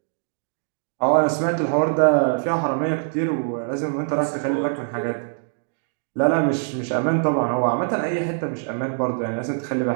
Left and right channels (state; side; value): silent; left; digital silence